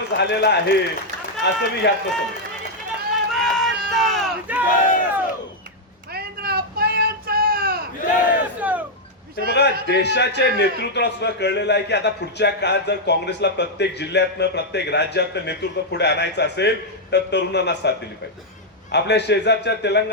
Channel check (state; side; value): normal; both; correlation -0.03